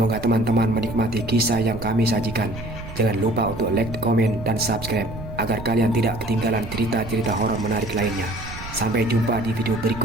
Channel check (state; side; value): noise; right; rumble, 12 dB below the sound